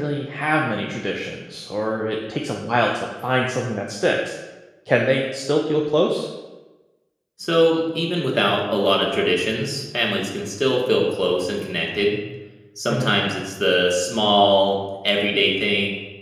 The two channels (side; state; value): both; identical; correlation 1.00